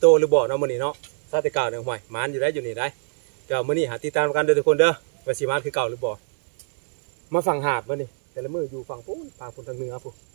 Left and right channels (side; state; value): left; silent; digital silence